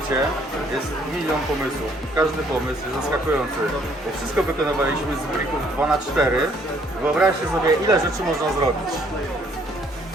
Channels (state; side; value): normal; both; correlation 0.64